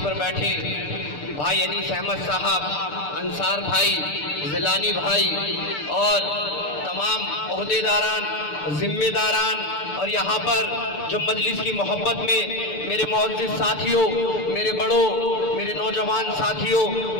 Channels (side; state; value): right; late; 6.8 ms